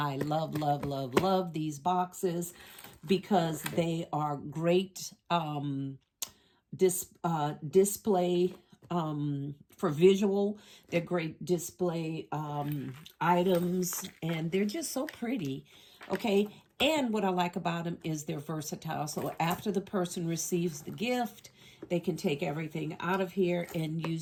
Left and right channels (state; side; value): identical; both; correlation 1.00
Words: love these boxes because they are great display for visual. They're great display items, and they're just so pretty. Okay, and what I like about them is they're versatile. So after the person receives the gift, they can take everything out of here and